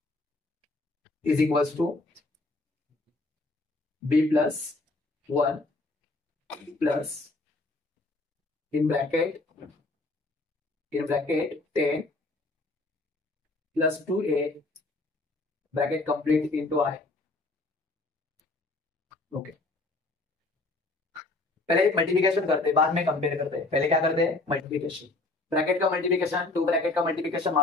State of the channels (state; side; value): quieter; right; 3.0 dB